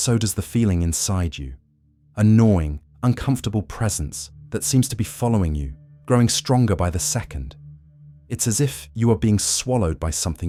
does the feeling inside you, a gnawing, uncomfortable presence that seems to be following you, growing stronger by the second. It's as if you are being swallowed by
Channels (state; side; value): identical; both; correlation 1.00